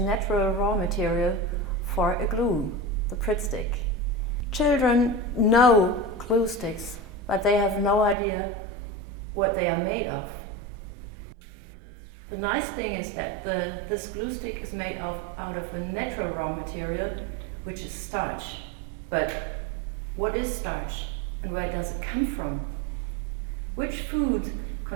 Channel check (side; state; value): left; drops out; at 8.2 s